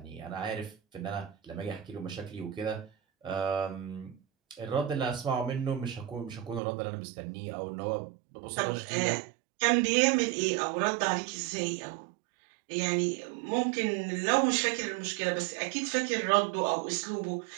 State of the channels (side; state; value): left; drops out; at 6.6 s